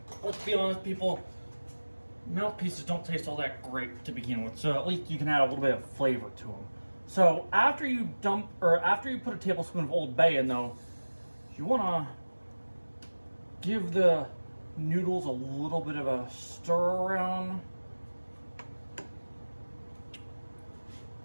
be honest, people, mouthpieces don't taste all that great to begin with, so at least you can add a little bit of flavor to them. So after you put a tablespoon of Old Bay in, though, you want to give the noodles a little bit of a stir around.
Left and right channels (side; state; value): both; inverted; correlation -1.00